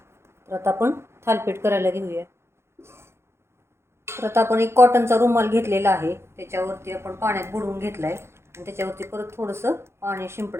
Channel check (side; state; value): left; late; 0.12 ms